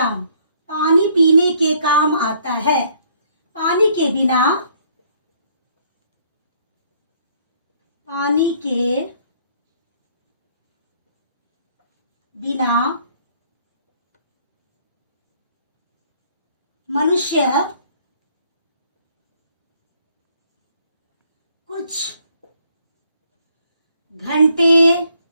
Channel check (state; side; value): inverted; both; correlation -0.64